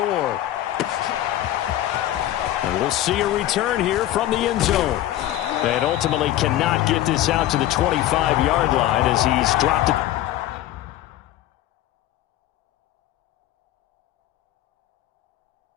And we'll see a return here from the end zone. And ultimately cannot get this out to the 25-yard line as he's dropped it.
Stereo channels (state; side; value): quieter; right; 13.7 dB